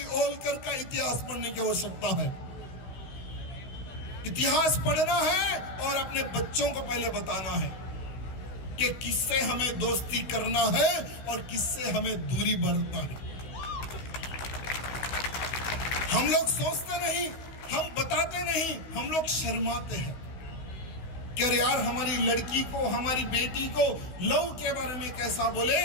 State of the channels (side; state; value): right; late; 16 ms